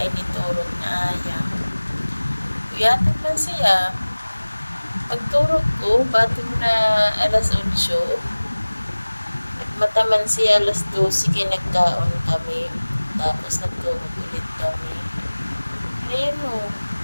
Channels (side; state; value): both; inverted; correlation -1.00